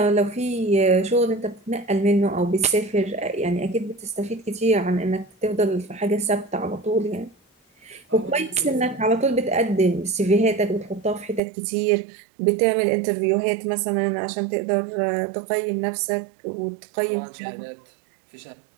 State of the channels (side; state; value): left; drops out; at 11.4 s